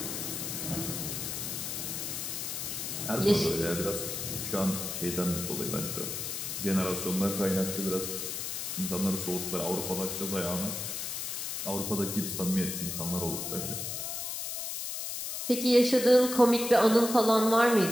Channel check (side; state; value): left; noise; hiss, 4 dB below the sound